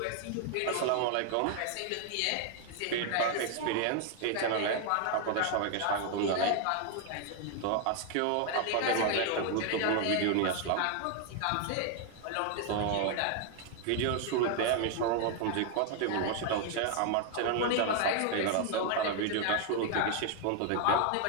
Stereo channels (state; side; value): different; both; correlation 0.00